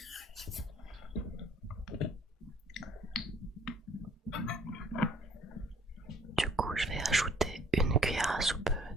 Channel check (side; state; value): both; normal; correlation 0.58